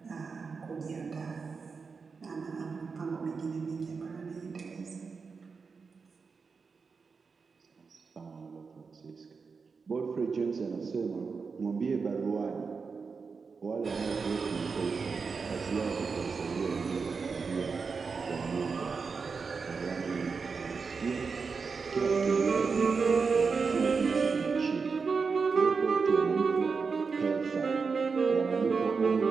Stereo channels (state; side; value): quieter; left; 5.0 dB